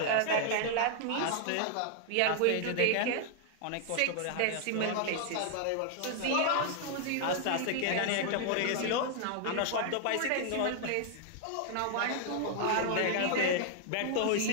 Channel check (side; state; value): both; different; correlation 0.00